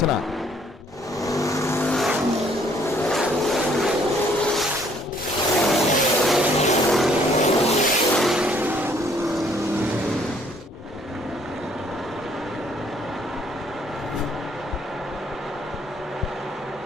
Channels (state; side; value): normal; both; correlation 0.63